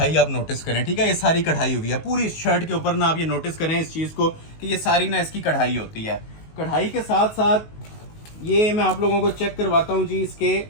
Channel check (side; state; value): right; late; 19 ms